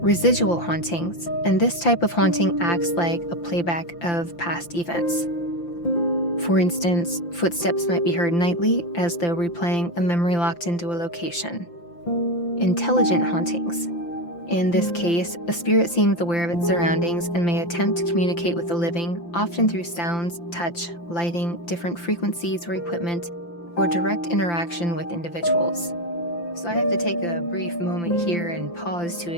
Residual hauntings, and this type of haunting acts like a playback of past events. For instance, footsteps might be heard nightly as though replaying a memory locked into a location. Intelligent hauntings. In this case, a spirit seems aware of its surroundings and may attempt to communicate with the living, often through sounds, touch, lighting, different frequencies or equipment, or direct interaction with individuals. So I have to take a brief moment here and pause to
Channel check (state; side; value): late; right; 5.8 ms